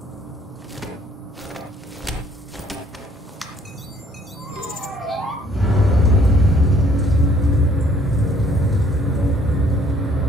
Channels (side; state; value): both; normal; correlation 0.62